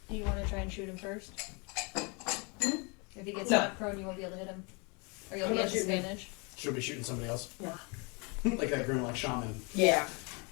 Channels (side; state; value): right; quieter; 31.7 dB